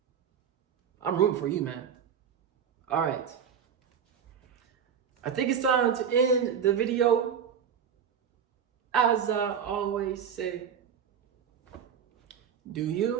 I'm rooting for you, man. All right. I think it's time to end the video. As I always say, do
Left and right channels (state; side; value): quieter; left; 7.7 dB